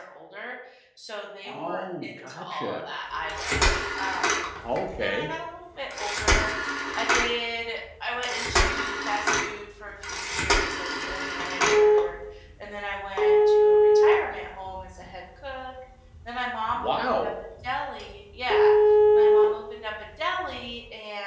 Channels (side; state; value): both; identical; correlation 1.00